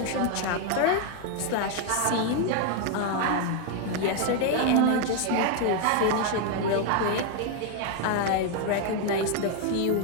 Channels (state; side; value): different; both; correlation 0.01